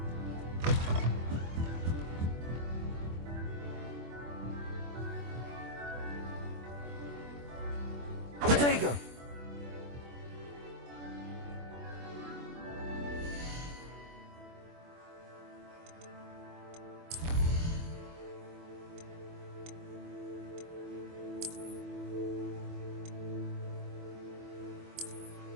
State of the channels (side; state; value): left; late; 24 ms